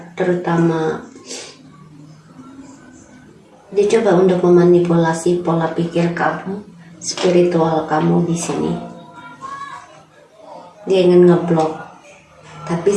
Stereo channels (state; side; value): identical; both; correlation 1.00